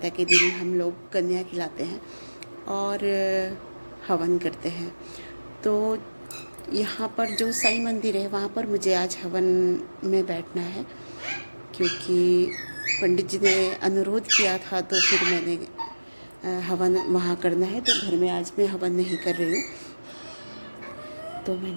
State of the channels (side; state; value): both; inverted; correlation -1.00